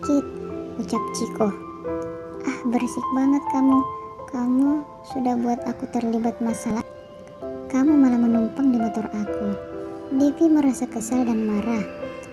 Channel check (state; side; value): identical; both; correlation 1.00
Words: ucap Ciko. "Ah, berisik banget kamu. Kamu sudah buat aku terlibat masalah. Kamu malah menumpang di motor aku." Devi merasa kesal dan marah.